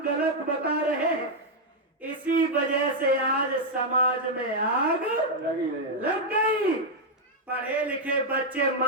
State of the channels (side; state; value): both; normal; correlation -0.01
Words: गलत बता रहे हैं। इसी वजह से आज समाज में आग लग गई। पढ़े लिखे बच्चे